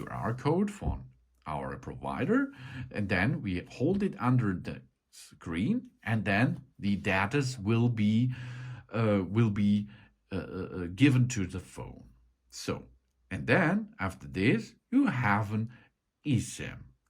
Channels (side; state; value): both; identical; correlation 1.00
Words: code from our provider, and then we hold it under the screen, and then the data will be given to the phone. So, and then after this, you have an eSIM